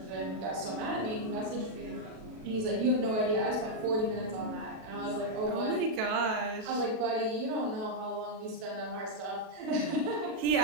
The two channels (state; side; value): late; left; 37 ms